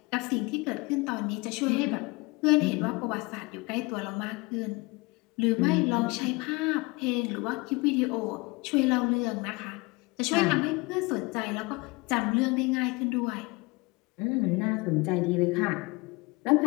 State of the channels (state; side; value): quieter; right; 25.6 dB